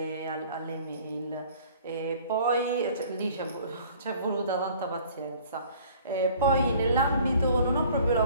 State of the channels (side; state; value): both; inverted; correlation -0.52